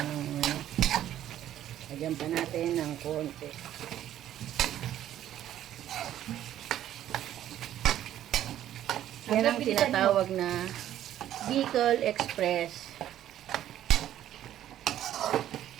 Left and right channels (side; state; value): left; quieter; 11.9 dB